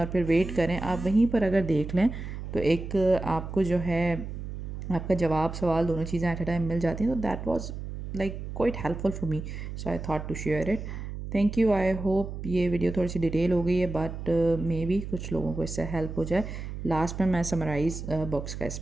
फिर वेट करें, आप वहीं पर अगर देख लें तो एक आपको जो है आपका जवाब सवाल दोनों चीज़ें एट अ टाइम मिल जाती हैं। तो that was like quite helpful for me, so I thought to share it. Thank you. I hope ये वीडियो थोड़ी सी डिटेल हो गई है, बट मे बी कुछ लोगों को इससे हेल्प हो जाए। लास्ट में मैं समराइज़ बुक्स का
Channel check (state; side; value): noise; right; hum, 8 dB below the sound